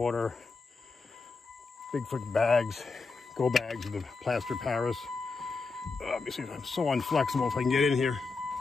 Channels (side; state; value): right; quieter; 4.3 dB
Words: Bigfoot bags, go bags with the plaster Paris. Let me see if I'm so unflexible if I can get in here.